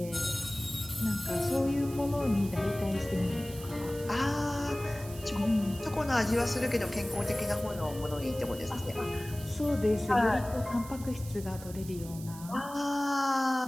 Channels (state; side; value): noise; right; hiss, 16 dB below the sound